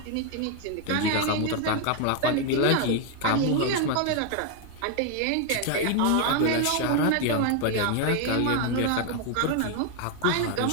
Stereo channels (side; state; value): both; different; correlation 0.01